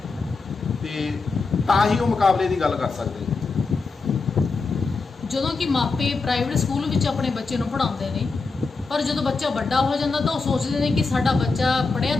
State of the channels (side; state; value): right; quieter; 4.2 dB